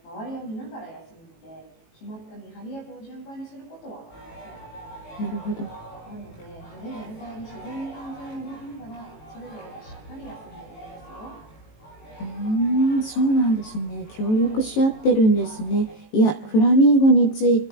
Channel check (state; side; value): late; right; 18 ms